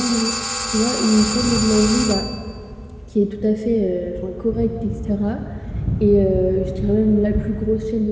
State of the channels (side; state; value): both; identical; correlation 1.00